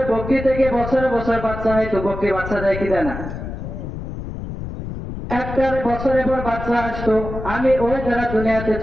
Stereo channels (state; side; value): noise; left; rumble, 8 dB below the sound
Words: বকরি থেকে বছরে বছর বাচ্চা হয়তো, বকরি বাচ্চা দেয় কি দেয় না, একটা বছরের পর বাচ্চা আসতো, আমি ওই দ্বারা দুনিয়াতে